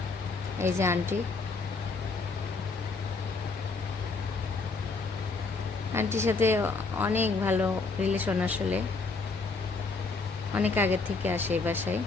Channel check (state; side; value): quieter; right; 4.0 dB